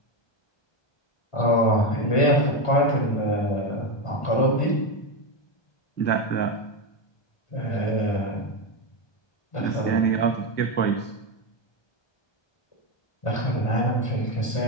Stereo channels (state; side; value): late; right; 1.2 ms